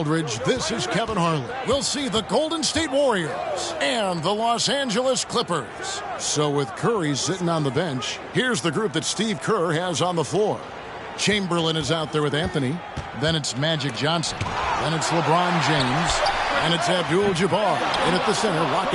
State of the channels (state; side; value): identical; both; correlation 1.00